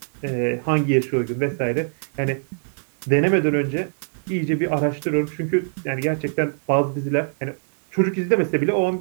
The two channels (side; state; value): left; silent; 63 dB below the other